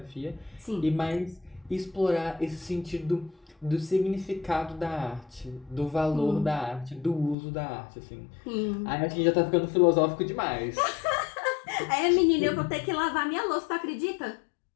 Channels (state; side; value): drops out; right; at 7.4 s